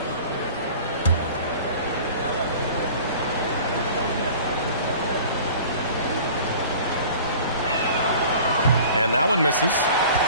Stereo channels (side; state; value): both; inverted; correlation -0.44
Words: And that one misses.